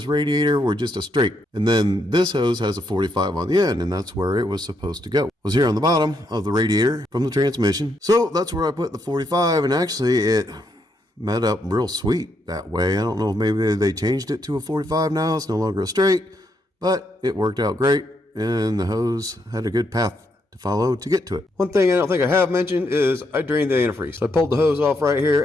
radiator were just a straight. And then this hose has a 45 on the end, and that's where it was supposed to go. It was here on the bottom of the radiator from the transmission. So that's where I put the 45, and actually it met up real sweet that way. I don't know if maybe they changed it to a 45 now. It's no longer a straight, but it worked out great, and the hose had a good path to follow to get to it. One thing I don't think I have mentioned is I drained the antifreeze. So I pulled the hose off right here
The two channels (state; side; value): normal; both; correlation 0.77